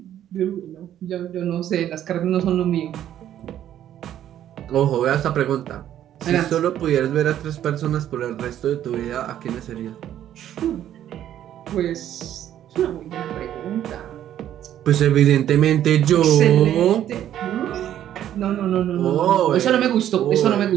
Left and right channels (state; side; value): quieter; left; 11.3 dB